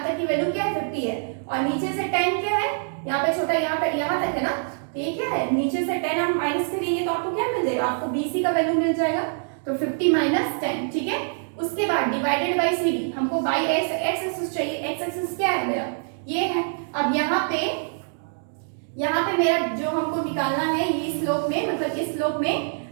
तक की वैल्यू क्या है 50 है, और नीचे से 10 क्या है, यहाँ पे छोटा यहाँ तक है ना, तो ये क्या है, नीचे से 10 हम माइनस करेंगे तो आपको क्या मिल जाएगा, आपको BC का वैल्यू मिल जाएगा। तो 50 माइनस 10, ठीक है। उसके बाद डिवाइडेड बाय CD, हमको बाय x एक्सिस चाहिए, x एक्सिस क्या है मेरा ये है। अब यहाँ पे मेरा जो हमको निकालना है ये स्लोप में, मतलब इस स्लोप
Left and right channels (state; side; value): silent; left; digital silence